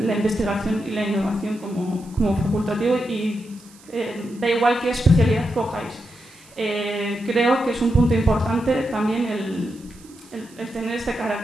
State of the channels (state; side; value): noise; right; hiss, 25 dB below the sound